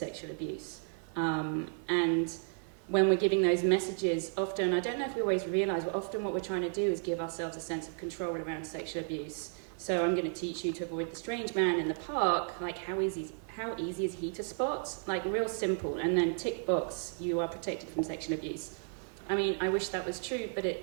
abuse. And when we're giving those messages, often, I don't know if we always realise, but often what we're trying to do is give ourselves a sense of control around sexual abuse. So I'm going to teach you to avoid the strange man in the park, how easy is he to spot? Real simple, and then tick box, you are protected from sexual abuse. I mean, I wish that was true, but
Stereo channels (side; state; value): left; silent; 55 dB below the other